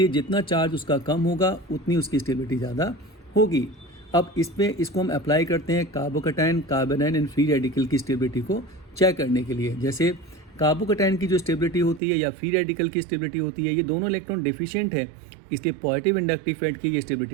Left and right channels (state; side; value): drops out; left; at 12.0 s